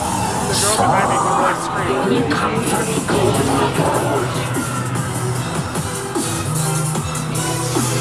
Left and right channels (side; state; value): both; identical; correlation 1.00